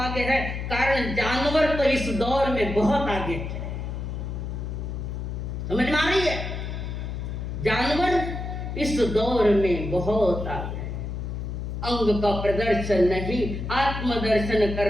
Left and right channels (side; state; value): left; noise; hum, 5 dB below the sound